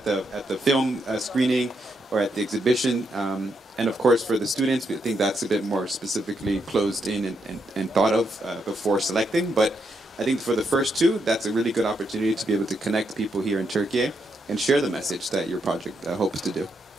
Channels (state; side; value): normal; both; correlation 0.80